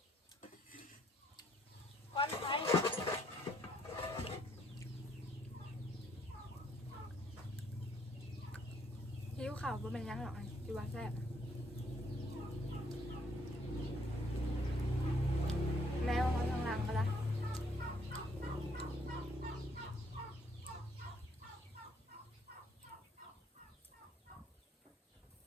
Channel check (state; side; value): normal; both; correlation 0.67